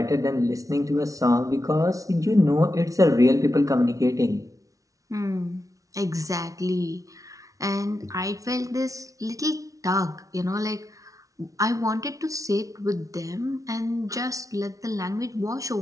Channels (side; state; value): left; late; 0.17 ms